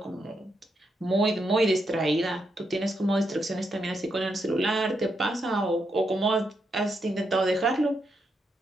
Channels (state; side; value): normal; both; correlation 0.81